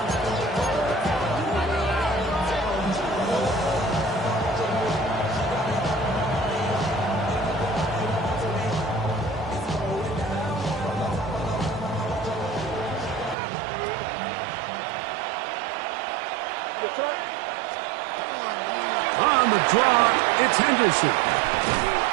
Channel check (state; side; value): drops out; left; at 13.4 s